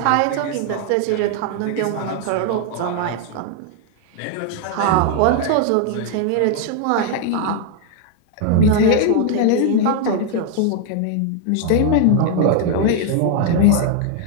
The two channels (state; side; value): different; both; correlation 0.00